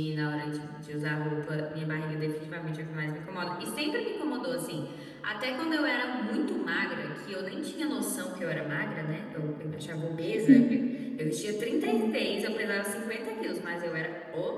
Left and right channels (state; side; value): identical; both; correlation 1.00